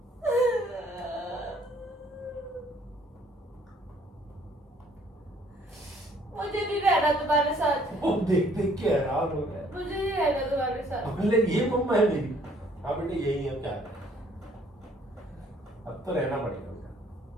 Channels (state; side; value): normal; both; correlation 0.61